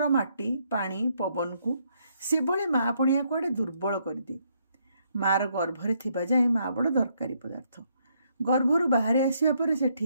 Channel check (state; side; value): inverted; both; correlation -0.73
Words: माटी पानी पवन को से भले माँ पणिया कुआडे दुर्बल करदे। मार गर्भरे थिबा जाए माँ बड़ दरकारी पदार्थ। गर्भरु बाहर आसिया परे